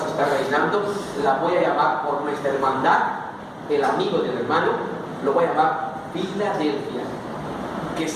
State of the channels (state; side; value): identical; both; correlation 1.00